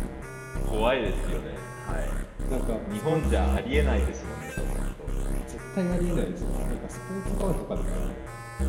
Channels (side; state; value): both; identical; correlation 1.00